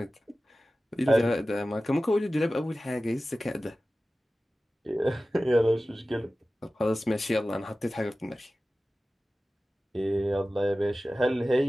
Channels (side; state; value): both; normal; correlation 0.96